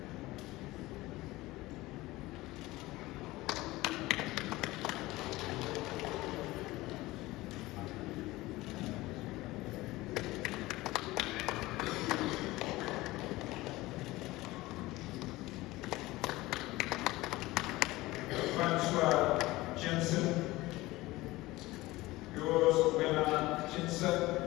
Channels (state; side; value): quieter; right; 19.1 dB